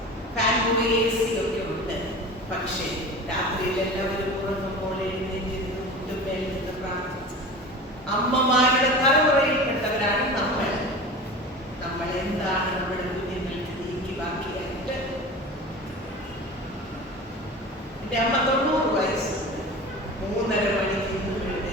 എൻ്റെ അമ്മ 90 വയസ്സുണ്ട്. 3:30 മണിക്ക്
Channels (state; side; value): normal; both; correlation 0.34